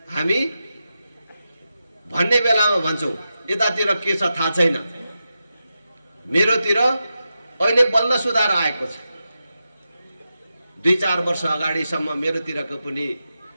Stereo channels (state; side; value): inverted; both; correlation -0.90